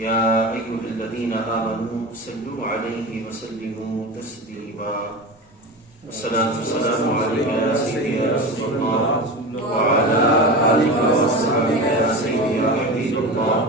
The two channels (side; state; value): both; normal; correlation 0.28